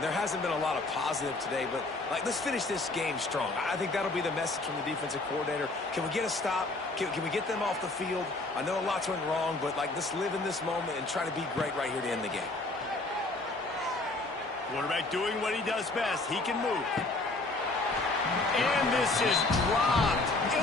there hasn't been a lot of positive today, but let's finish this game strong. I think that'll be the message from the defensive coordinator. Can we get a stop? Can we get them off the field? I know a lot's went wrong, but let's live in this moment and try to be great right here to end the game. Quarterback doing what he does best. He can move. And this is dropped.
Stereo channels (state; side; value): quieter; right; 3.1 dB